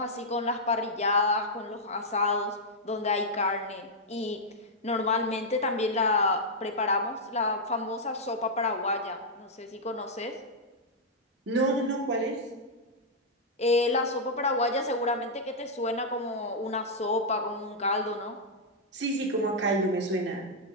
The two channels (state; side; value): normal; both; correlation -0.06